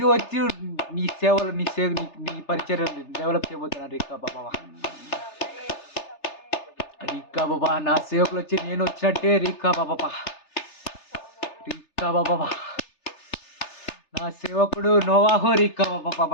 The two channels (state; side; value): late; right; 3.3 ms